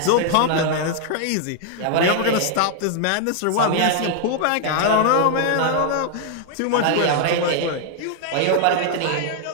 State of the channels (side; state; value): both; different; correlation 0.00